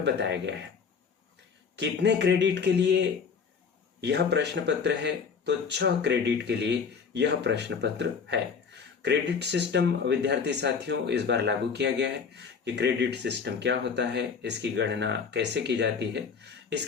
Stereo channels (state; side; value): quieter; right; 5.9 dB